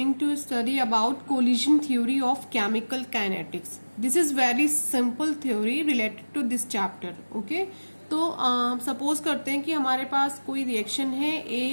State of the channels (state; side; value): inverted; both; correlation -1.00